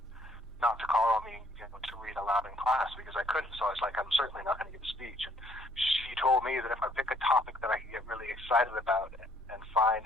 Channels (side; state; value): both; normal; correlation 0.64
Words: not to call on me, to read aloud in class, because I couldn't. So I was like, I'm certainly not going to give a speech. And she told me that if I pick a topic that I can get really excited about and find